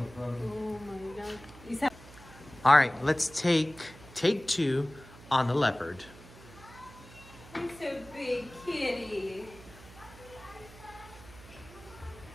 All right, let's take 2 on the leopard. He's so big, kitty.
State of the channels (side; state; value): right; noise; hum, 19 dB below the sound